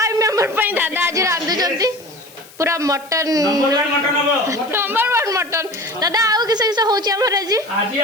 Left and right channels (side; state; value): left; noise; hiss, 22 dB below the sound